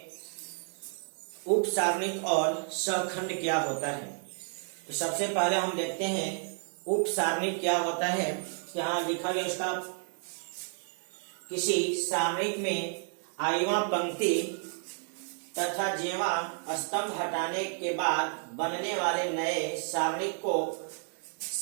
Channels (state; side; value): silent; left; 57 dB below the other